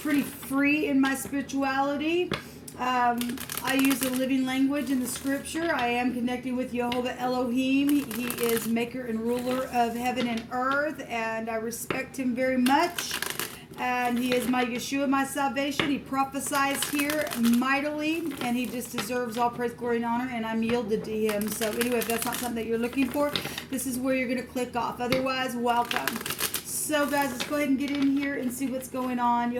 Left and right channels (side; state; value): both; identical; correlation 1.00